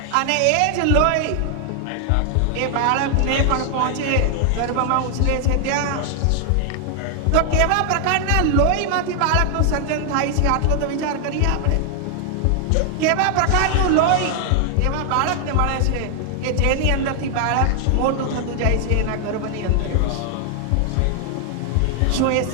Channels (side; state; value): both; different; correlation 0.00